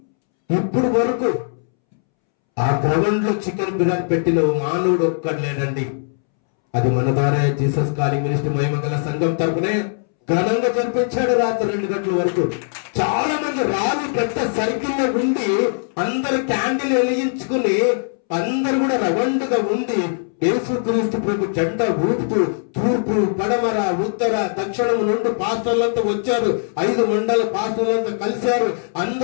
ఇప్పుడు వరకు ఆ గ్రౌండ్ లో చికెన్ బిర్యానీ పెట్టిన మానవుడు ఒక్కడు లేడండి. అది మన ద్వారా జీసస్ కాలింగ్ మినిస్ట్రీ మహిమగల సంఘం తరపునే ఘనంగా జరిపించాడు. రాత్రి 2 గంటల వరకు చాలా మంది రాళ్ళు పెద్ద సర్కిల్లో ఉండి అందరు క్యాండిల్ వెలిగించుకుని అందరు కూడా రవండుగా ఉండి యేసుక్రీస్తు ప్రభు జెండా ఊపుతూ తూర్పు, పడమర, ఉత్తర, దక్షిణం నుండి పాస్టర్లంతా వచ్చారు. 5 మండల పాస్టర్లంతా కలిశారు.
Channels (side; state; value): right; silent; 66 dB below the other